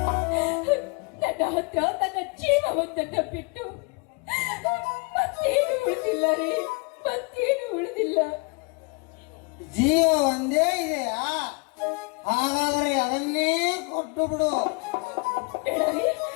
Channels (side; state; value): right; quieter; 31.2 dB